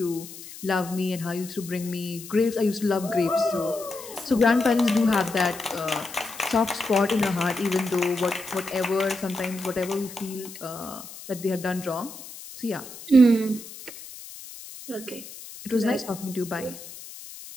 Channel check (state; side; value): noise; left; hiss, 14 dB below the sound